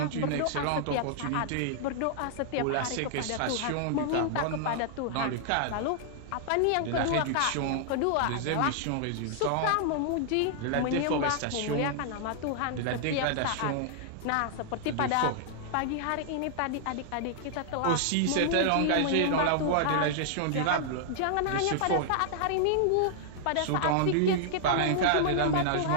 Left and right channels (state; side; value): different; both; correlation -0.01